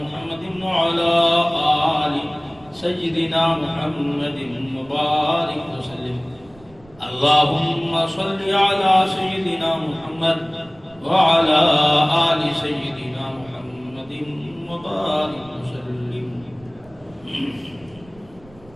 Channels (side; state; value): right; noise; rumble, 26 dB below the sound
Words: محمد وعلى آل سيدنا محمد وبارك وسلم اللهم صل على سيدنا محمد وعلى آل سيدنا محمد وبارك وسلم.